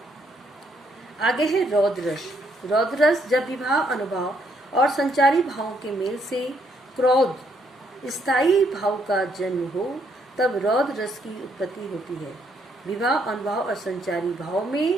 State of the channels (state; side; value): normal; both; correlation 0.71